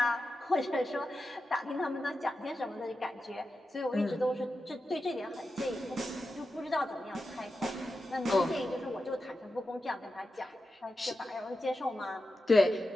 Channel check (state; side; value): normal; both; correlation 0.90